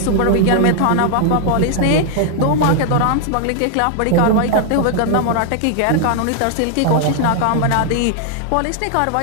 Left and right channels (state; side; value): different; both; correlation 0.00